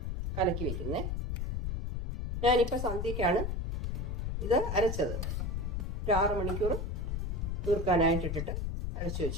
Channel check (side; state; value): left; noise; rumble, 2 dB below the sound